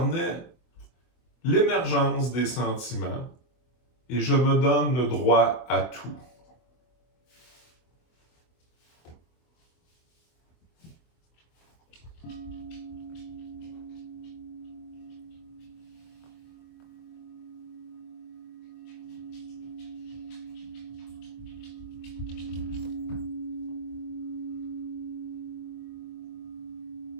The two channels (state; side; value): late; right; 24 ms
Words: l'émergence des sentiments et je me donne le droit à tout.